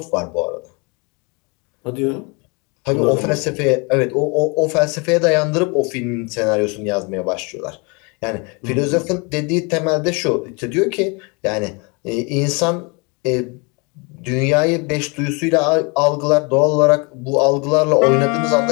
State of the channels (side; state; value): right; quieter; 30.8 dB